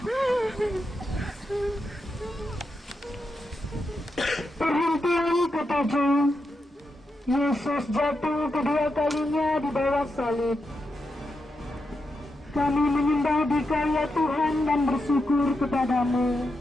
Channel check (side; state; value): both; normal; correlation 0.86